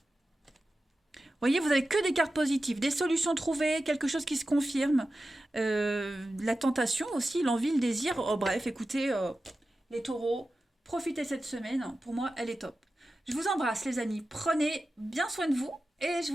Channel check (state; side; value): normal; both; correlation 0.93